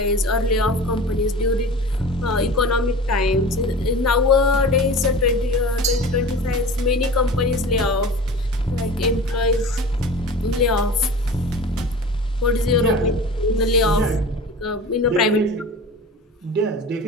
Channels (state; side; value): normal; both; correlation 0.37